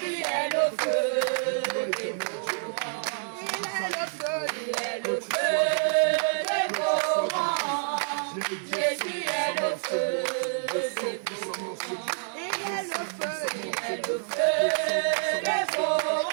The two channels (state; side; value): silent; left; 56 dB below the other